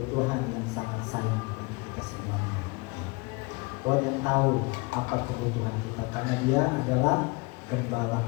Tuhan yang sangat sayang dengan kita semuanya. Tuhan yang tahu apa kebutuhan kita, karena Dia adalah gembala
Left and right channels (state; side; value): quieter; right; 27.5 dB